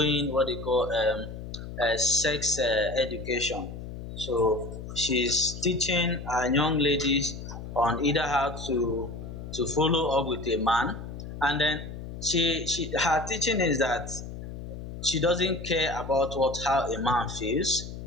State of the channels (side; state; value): left; noise; hum, 10 dB below the sound